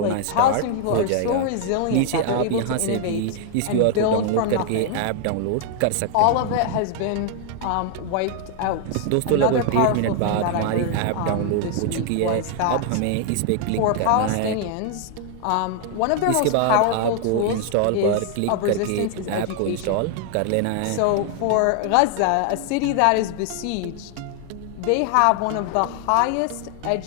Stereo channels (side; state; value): both; different; correlation 0.00